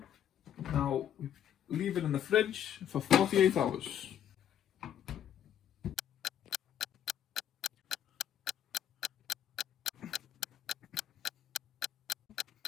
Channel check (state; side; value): quieter; right; 10.1 dB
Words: Now we leave it in the fridge for 48 hours.